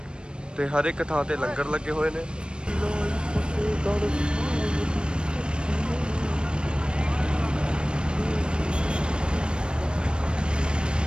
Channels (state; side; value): late; left; 0.054 ms